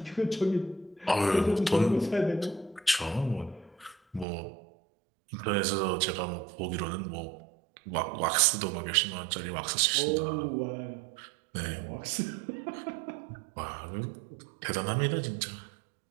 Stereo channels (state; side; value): drops out; left; at 4.2 s